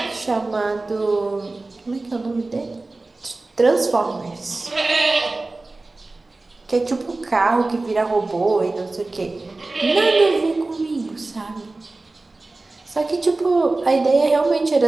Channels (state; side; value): quieter; left; 3.2 dB